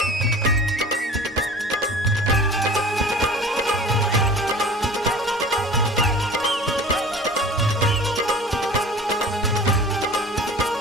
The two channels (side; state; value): both; normal; correlation 0.41